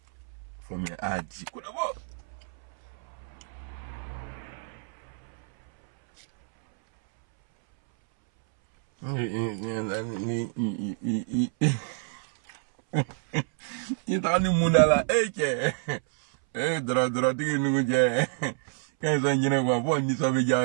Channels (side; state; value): left; silent; 59 dB below the other